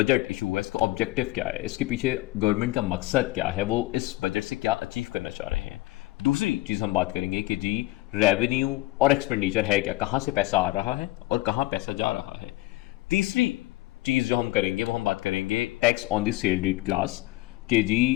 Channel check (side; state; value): right; quieter; 19.3 dB